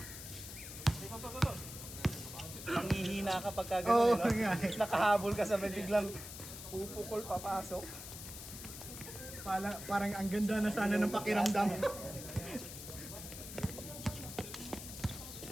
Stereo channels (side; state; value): left; noise; hiss, 11 dB below the sound